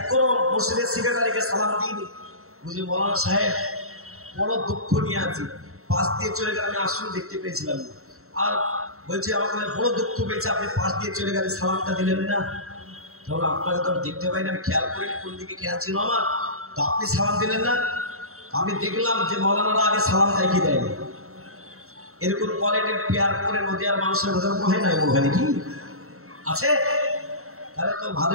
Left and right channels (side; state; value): left; late; 0.63 ms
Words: মসজিদের সেক্রেটারিকে সালাম দিইনি, বুঝলি মওলানা সাহেব বড় দুঃখ নিয়ে আছি, পাশ দিয়ে চলে গেলে আমি আসলে দেখতে পেয়েছিলাম, আর বলছে আমাকে বড় দুঃখ পেয়েছে, আপনি পাশ দিয়ে চলে গেলে সালামটা দিলেন না। তাহলে আপনাকে তো আমি দেখতে পাই না, আমি খেয়াল করিনি কোন দিকে খেয়াল ছিল আমার, তো আপনি সালাম দিলেন না। আমি দেখলাম যে মওলানারা আগে সালাম দেয় কি দেয়নি। এরকম কোয়ালিটির পেয়ার করে নদীয়ার মানুষের কথা হয় না, ওখানে কি আছে? তাহলে তো